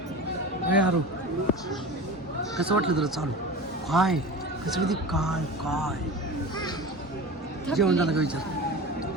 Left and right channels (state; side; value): normal; both; correlation 0.32